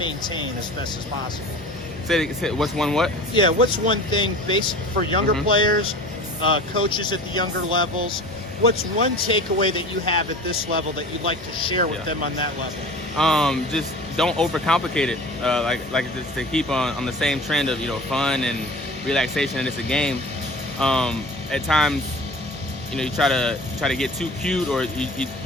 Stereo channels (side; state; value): both; normal; correlation 0.39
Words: as best as possible? Say what's one what? Yeah, what's one thing for younger players, coaches at the younger levels, what's one takeaway that you have at this level that you'd like to share with them on that level? Just don't overcomplicate it. Like just to keep on the same trend of fun and relaxation, and it's a game. At times, you try to get too cute, or